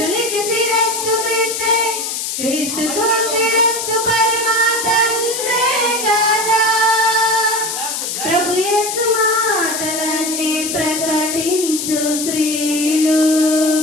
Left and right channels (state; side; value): noise; left; hiss, 4 dB below the sound